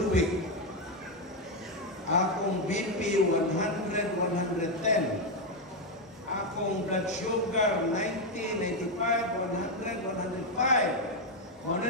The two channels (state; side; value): normal; both; correlation 0.05